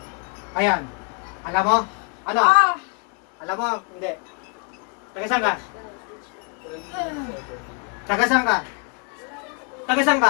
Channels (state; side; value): quieter; right; 37.3 dB